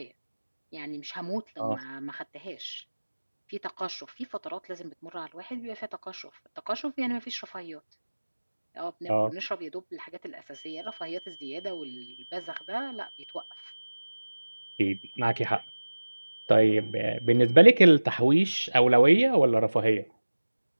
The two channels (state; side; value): inverted; both; correlation -1.00